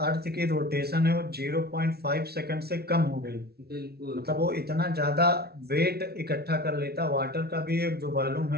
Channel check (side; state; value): left; late; 0.45 ms